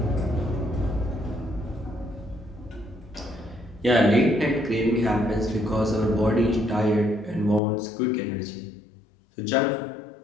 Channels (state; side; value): drops out; right; at 7.6 s